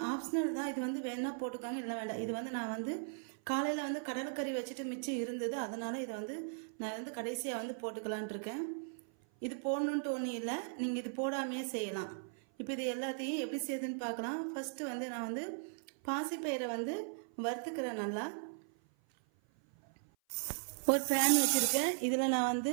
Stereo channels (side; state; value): left; silent; 53 dB below the other